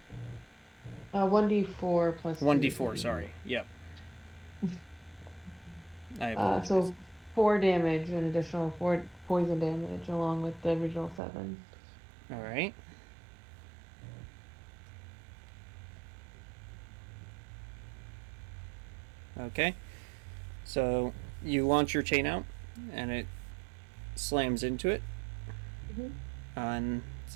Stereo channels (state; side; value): drops out; left; at 11.2 s